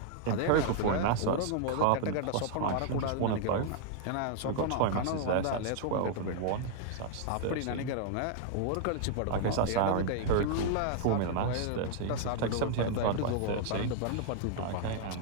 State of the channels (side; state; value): both; different; correlation 0.00